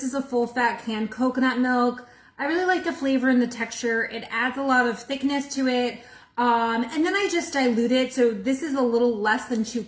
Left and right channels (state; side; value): identical; both; correlation 1.00